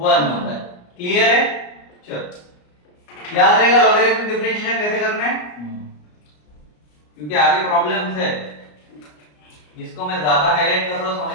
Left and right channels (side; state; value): right; late; 34 ms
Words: होता है। क्लियर है? चलो याद रहेगा लॉगरिथमिक डिफरेंशिएशन कैसे करना है, क्योंकि आगे प्रॉब्लम्स है। जिसको मैं ज्यादा हाईलाइट कर रहा हूं